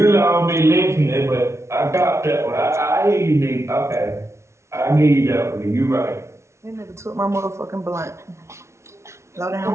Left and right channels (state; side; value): late; left; 0.13 ms